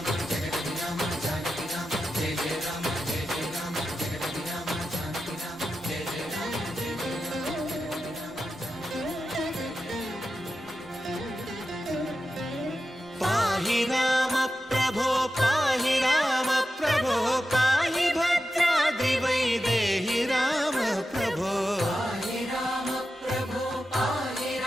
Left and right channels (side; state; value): both; normal; correlation 0.91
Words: జగతి రామ జానకి రామ జయ జయ రామ జయ జయ రామ జగతి రామ జానకి రామ జయ జయ రామ జయ జయ రామ. పాహి రామ ప్రభో పాహి రామ ప్రభో పాహి భద్రాద్రి వైదేహి రామ ప్రభో. పాహి రామ ప్రభో పాహి